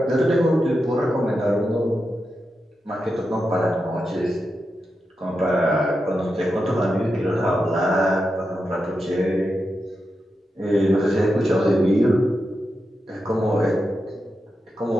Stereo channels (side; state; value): both; normal; correlation 0.88